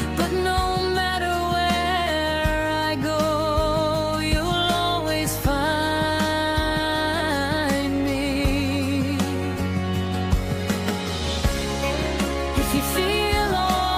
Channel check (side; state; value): both; identical; correlation 1.00